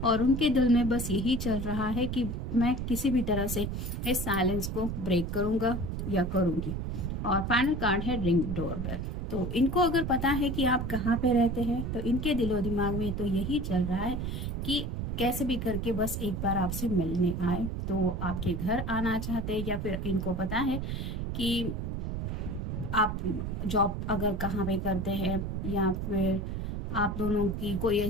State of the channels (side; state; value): right; noise; rumble, 3 dB below the sound